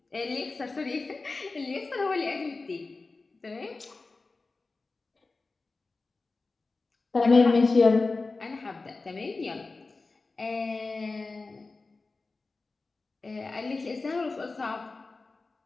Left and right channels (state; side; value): quieter; right; 3.7 dB